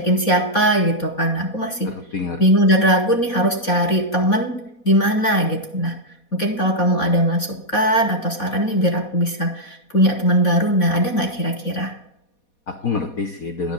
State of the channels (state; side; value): late; right; 4.2 ms